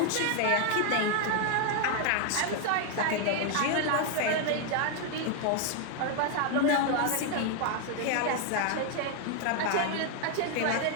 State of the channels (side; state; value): both; different; correlation 0.01